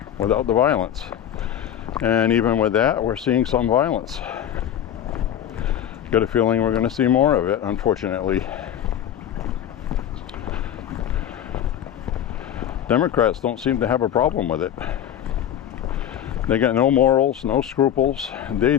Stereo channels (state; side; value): quieter; right; 10.3 dB